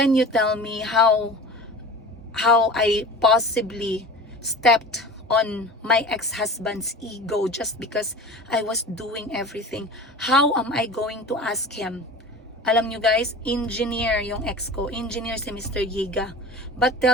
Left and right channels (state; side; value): normal; both; correlation 0.36